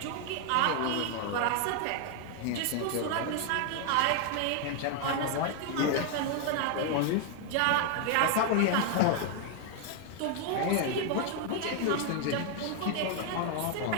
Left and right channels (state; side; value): different; both; correlation 0.00